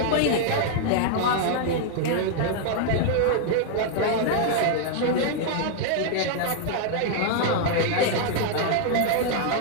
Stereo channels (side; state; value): both; different; correlation 0.00